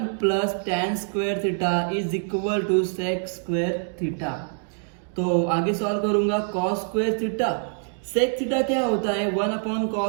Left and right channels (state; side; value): silent; left; 62 dB below the other